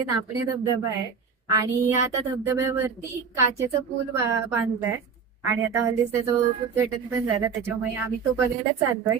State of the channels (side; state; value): left; quieter; 6.0 dB